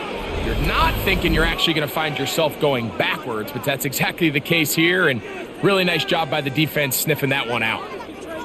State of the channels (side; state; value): both; identical; correlation 1.00